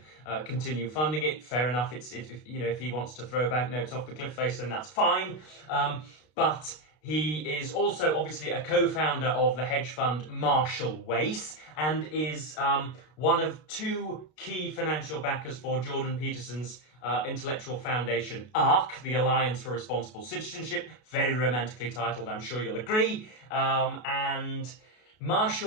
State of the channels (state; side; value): late; right; 33 ms